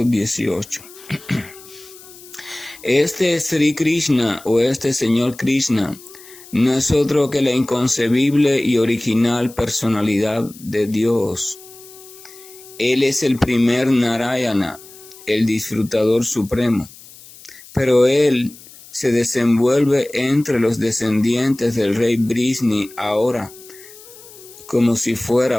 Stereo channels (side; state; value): left; noise; hiss, 20 dB below the sound